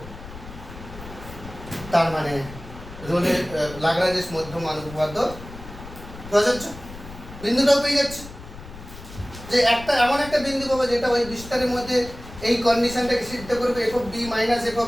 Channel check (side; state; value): left; noise; rumble, 15 dB below the sound